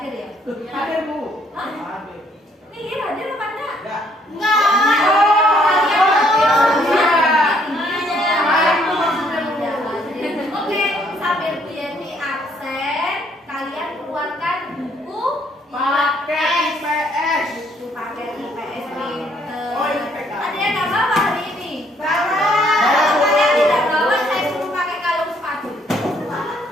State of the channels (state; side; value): normal; both; correlation 0.66